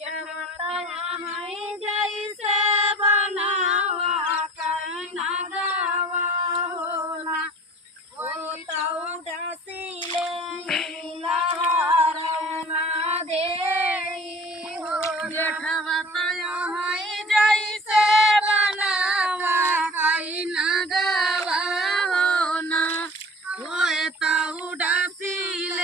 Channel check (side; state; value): both; normal; correlation 0.44